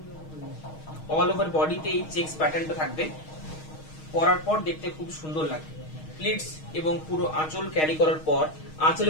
অল ওভার বডিতে এই চেকস প্যাটার্নটা থাকবে, পরার পর দেখতে খুব সুন্দর লাগে। প্লিটস এবং পুরো আঁচল ক্যারি করার পর আঁচল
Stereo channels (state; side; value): late; right; 6.4 ms